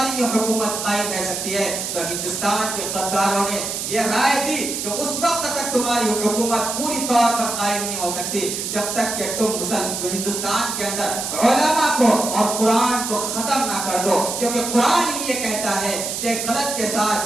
یہ حکومت قائم رہ سکتی ہے. تو ہندوستان کے غداروں نے یہ رائے دی کہ اس وقت تک تمہاری حکومت پوری طور پر قائم نہیں ہو سکتی جب تک کہ تم ہندوستان کے اندر علماء کو اور قرآن کو ختم نہ کر دو, کیونکہ قرآن ہی یہ کہتا ہے کہ غلط کے ساتھ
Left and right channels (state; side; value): noise; right; hiss, 4 dB below the sound